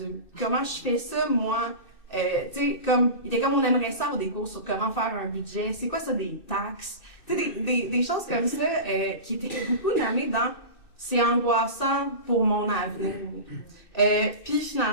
Comment je fais ça, moi, il était comme on aimerait ça avoir des cours sur comment faire un budget, c'est quoi ça, des taxes? Des choses comme ça qui étaient beaucoup nommées dans « c'est angoissant pour mon avenir ». Puis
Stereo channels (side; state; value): right; late; 2.6 ms